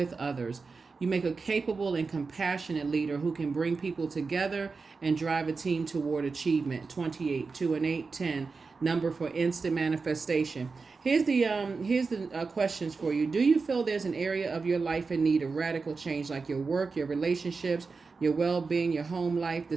others. You make a capable and compassionate leader who can bring people together and drive a team toward achievement. 28, 2 and 8, 10, number for instant manifestation. Here's the questions for you. Do you feel there's an area of your life in need of radical change, like your work, your relationships, your well-being, your home life? The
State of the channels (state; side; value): quieter; left; 4.5 dB